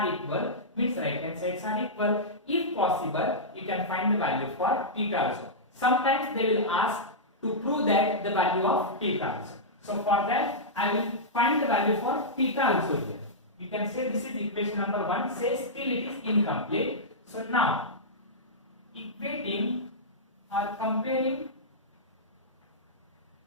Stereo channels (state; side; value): normal; both; correlation -0.12